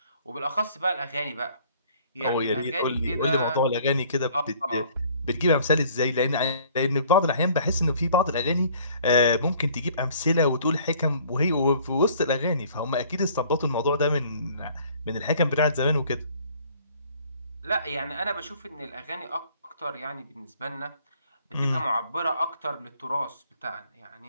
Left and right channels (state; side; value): inverted; both; correlation -0.56